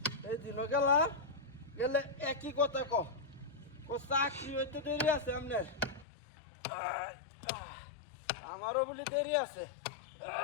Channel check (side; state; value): right; drops out; at 6.1 s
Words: এই দিন গেলা গেলে একই কথা ক চাকরি হইতে দেরি আছে আপনার, আমারও বলি দেরি আছে।